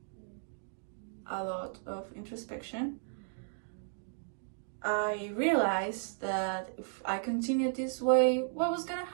a lot of introspection, I realized that if I continued this way, what was gonna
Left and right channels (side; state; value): left; silent; digital silence